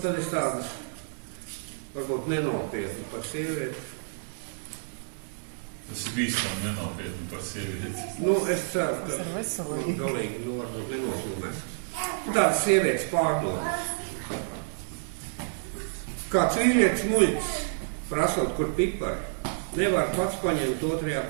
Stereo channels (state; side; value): silent; left; 59 dB below the other